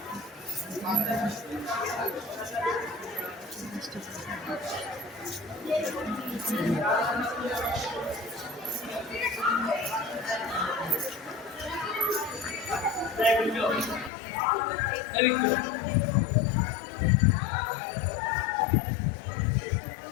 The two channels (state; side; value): drops out; right; at 14.1 s